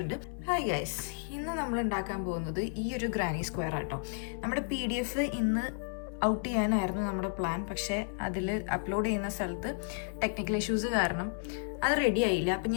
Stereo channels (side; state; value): right; silent; 56 dB below the other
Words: ഹായ് ഗൈസ്, ഇന്ന് നമ്മൾ ഉണ്ടാക്കാൻ പോകുന്നത് ഈ ഒരു ഗ്രാനി സ്ക്വയർ ആട്ടോ. നമ്മുടെ PDF ഇന്ന് ഔട്ട് ചെയ്യാനായിരുന്നു നമ്മുടെ പ്ലാൻ. പക്ഷേ അതിൽ അപ്ലോഡ് ചെയ്യുന്ന സ്ഥലത്ത് ടെക്നിക്കൽ ഇഷ്യൂസ് കാരണം അത് റെഡി ആയില്ല. അപ്പം